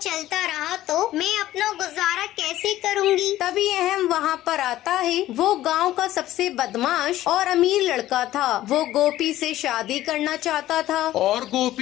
रहा तो मैं अपना गुजारा कैसे करूँगी? तभी अहम वहाँ पर आता है। वो गांव का सबसे बदमाश और अमीर लड़का था। वो गोपी से शादी करना चाहता था। और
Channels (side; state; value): right; quieter; 14.5 dB